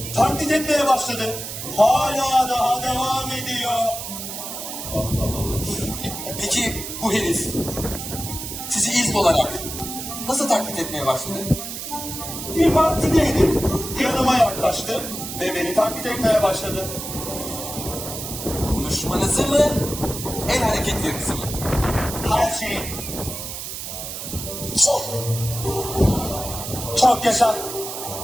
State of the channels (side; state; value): right; noise; hiss, 7 dB below the sound